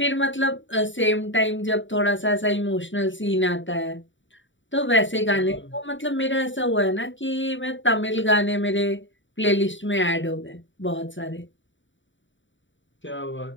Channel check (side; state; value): right; late; 0.55 ms